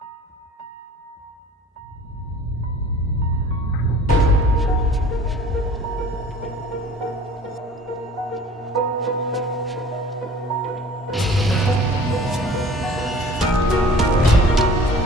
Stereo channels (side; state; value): both; normal; correlation 0.47